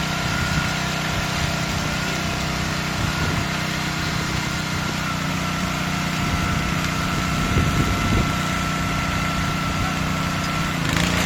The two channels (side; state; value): both; identical; correlation 1.00